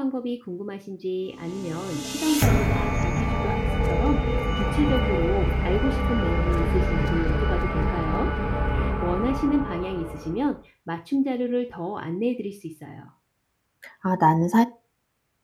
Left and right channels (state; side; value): identical; both; correlation 1.00